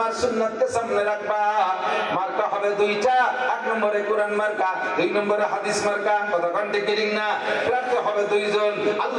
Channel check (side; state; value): both; identical; correlation 1.00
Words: সুন্নাতকে সামনে রাখবা। মার্কা হবে দুইটা, এক নম্বরে কোরআন মার্কা, দুই নম্বরে হাদিস মার্কা। কতক্ষণ ঠিক ঠিক না? প্রার্থী হবে দুইজন,